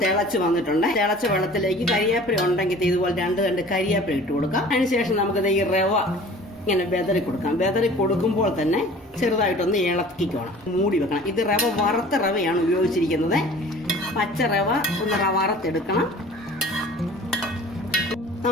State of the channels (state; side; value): normal; both; correlation 0.46